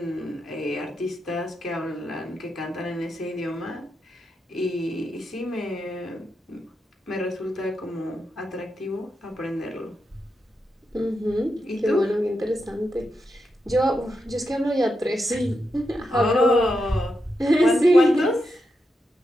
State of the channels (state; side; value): normal; both; correlation 0.85